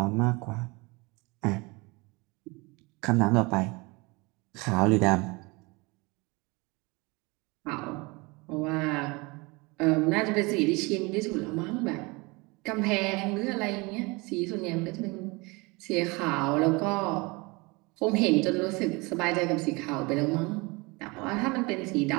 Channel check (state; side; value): quieter; left; 26.0 dB